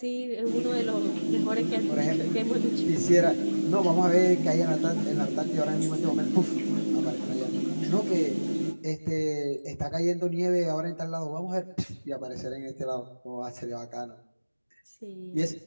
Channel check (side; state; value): both; inverted; correlation -1.00